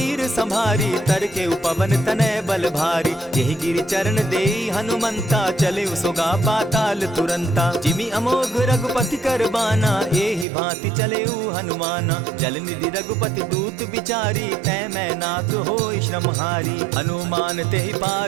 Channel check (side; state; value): left; drops out; at 10.5 s